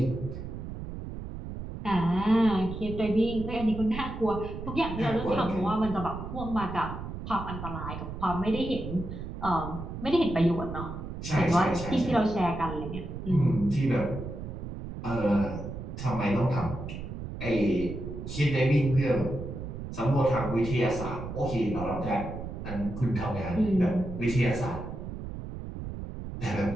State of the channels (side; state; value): right; noise; rumble, 8 dB below the sound